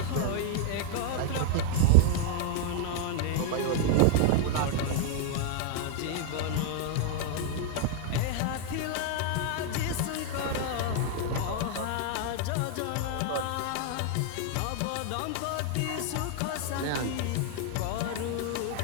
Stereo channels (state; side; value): different; both; correlation 0.00